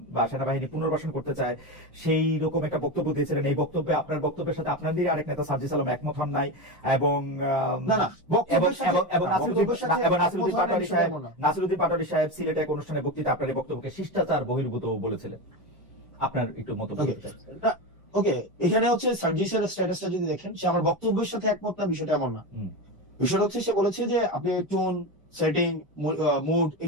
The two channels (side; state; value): both; normal; correlation 0.18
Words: বা সেনাবাহিনী পুনর্বাসন করতে চায়, সেই রকম একটা বক্তব্য দিয়েছিলেন। এই বক্তব্যে, আপনার বক্তব্যের সাথে আপনাদেরই আরেক নেতা সার্জিস আলম একমত হন নাই, এবং নাসিরুদ্দিন পাটোয়ারী সাহেব সিলেটে এক অনুষ্ঠানে বক্তৃতা আপনার এই বক্তব্যকে শিষ্টাচার বহির্ভূত বলেছিলেন। আপনার একটু মন্তব্য করতে চাই। ওকে, এখানে হচ্ছে সার্জিসের স্ট্যাটাসটা যদি দেখেন, সে আমার বক্তব্যের সাথে একমত না, বিষয়টা এমন না। বিষয়টা হচ্ছে সে বলেছে যে আপনি টোন, সেটিং, মুড,